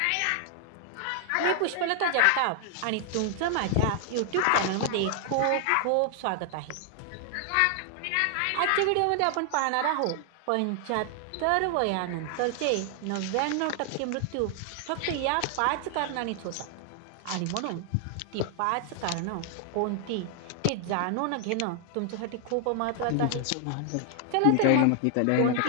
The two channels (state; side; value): different; both; correlation 0.00